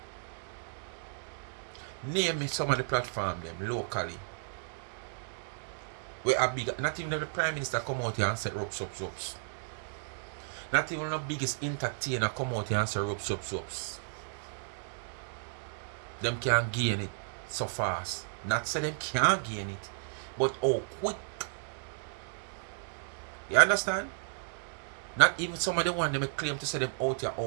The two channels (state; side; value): silent; left; digital silence